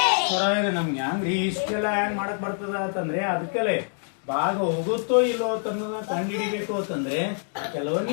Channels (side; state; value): right; silent; 61 dB below the other